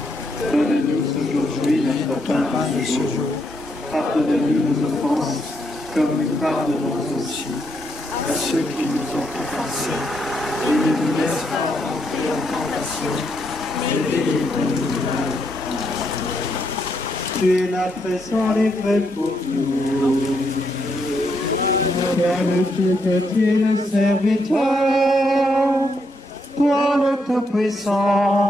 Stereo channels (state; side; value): normal; both; correlation 0.78